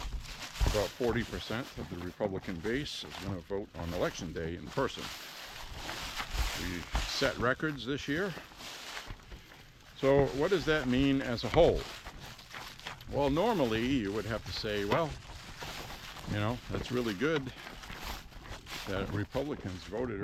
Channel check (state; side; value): identical; both; correlation 1.00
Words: about 40% of the Republican base is going to vote on election day in person. We set records this year. So what does that mean as a whole? Well, normally you would have to say, well, you know, that's really good that Republicans voted